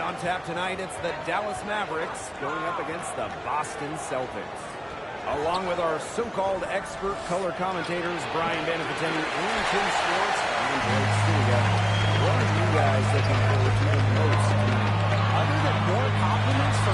tap tonight, it's the Dallas Mavericks going up against the Boston Celtics. Along with our so-called expert color commentators, Brian Banafiteni and Tim Schwartz, I'm Blake Stiga. What are you guys looking forward to the most tonight? Other than more compliments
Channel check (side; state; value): both; identical; correlation 1.00